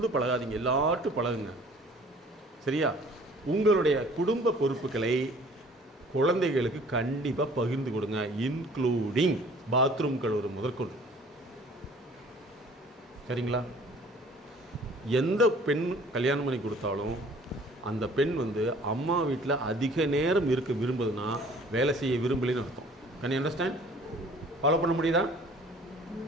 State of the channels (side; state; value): both; normal; correlation 0.52